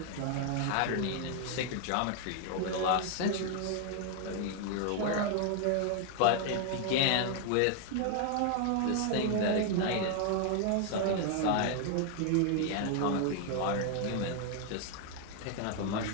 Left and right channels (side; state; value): both; different; correlation 0.00